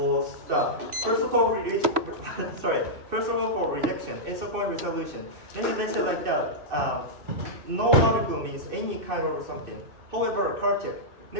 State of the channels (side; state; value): left; late; 2.6 ms